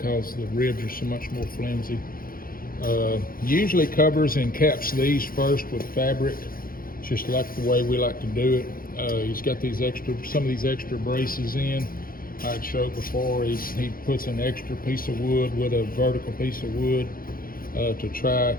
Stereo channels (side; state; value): right; late; 0.42 ms